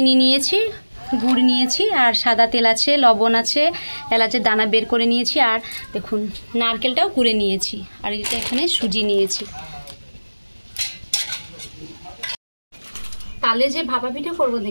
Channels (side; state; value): both; inverted; correlation -1.00